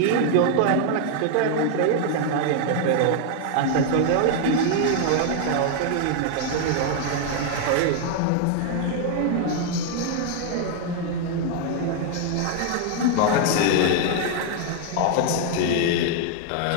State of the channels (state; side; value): different; both; correlation 0.00